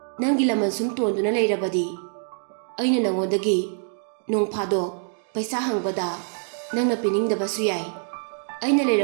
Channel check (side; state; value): left; silent; 62 dB below the other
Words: ꯅꯪꯒꯤ ꯂꯃꯟ ꯁꯨꯝ ꯇꯣꯟꯗꯨꯅ ꯂꯩꯔꯕꯗꯤ ꯑꯩꯅ ꯅꯪꯉꯣꯟꯗꯒꯤ ꯅꯣꯡ ꯐꯥꯗꯣꯛ ꯄꯩꯁꯥ ꯍꯪꯕꯗ ꯅꯪꯅ ꯄꯤꯅꯤꯡꯗꯕꯁꯨ ꯌꯥꯏ꯫ ꯑꯩꯅ